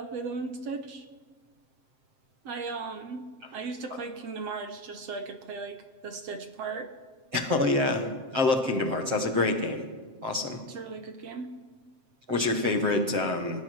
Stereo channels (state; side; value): late; left; 7.6 ms